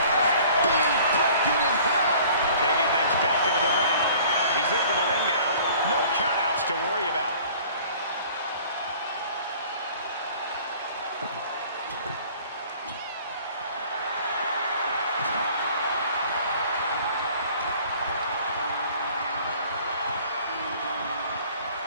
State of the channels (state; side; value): inverted; both; correlation -0.50